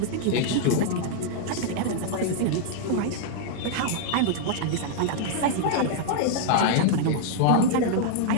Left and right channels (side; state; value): both; different; correlation -0.01